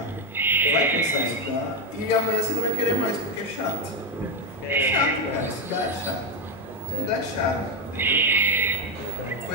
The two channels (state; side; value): normal; both; correlation 0.07